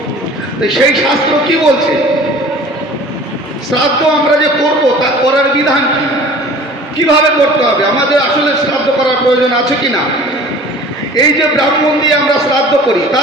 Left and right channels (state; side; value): normal; both; correlation 0.45